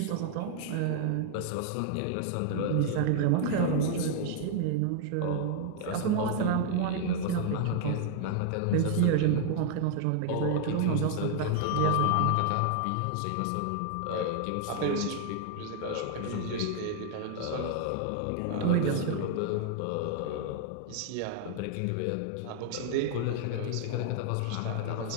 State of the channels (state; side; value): different; both; correlation 0.00